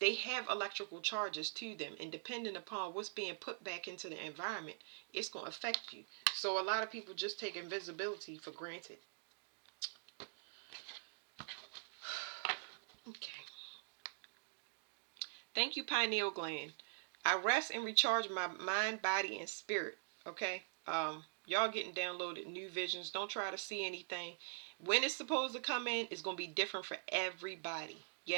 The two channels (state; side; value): silent; left; digital silence